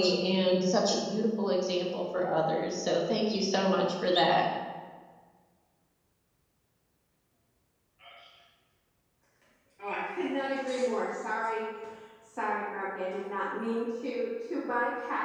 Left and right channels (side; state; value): both; identical; correlation 1.00